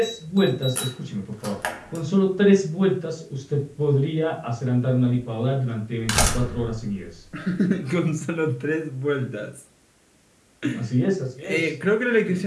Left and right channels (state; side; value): identical; both; correlation 1.00